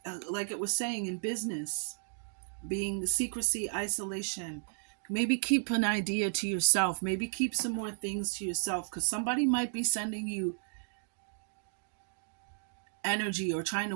like it was saying in business, being secrecy, isolation. Maybe keep an idea to yourself. Maybe keep some more things to yourself, because somebody might be sending you energy or trying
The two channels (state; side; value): silent; left; digital silence